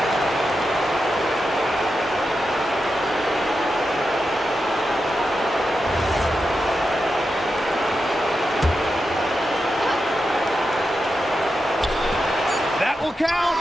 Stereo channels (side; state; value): both; normal; correlation 0.88